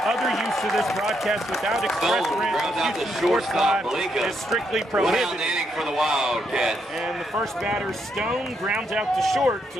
use of this broadcast without express written of Houston Sports Live is strictly prohibited. For the Wildcats. And the first batter, Stone, grounds out to short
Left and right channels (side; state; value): both; normal; correlation 0.77